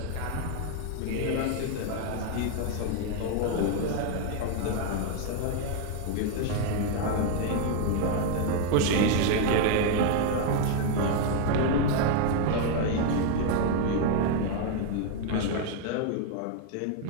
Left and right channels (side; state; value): both; different; correlation 0.00